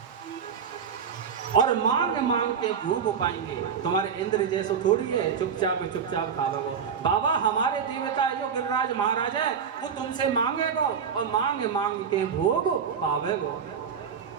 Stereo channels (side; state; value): left; quieter; 6.9 dB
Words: और मांग मांग के भोग पाएंगे। तुम्हारे इंद्र जैसो थोड़ी है चुपचाप चुपचाप खाओगे। बाबा हमारे देवता है जो गिरिराज महाराज है, वो तुमसे मांगेगो और मांग मांग के भोग पावेगो।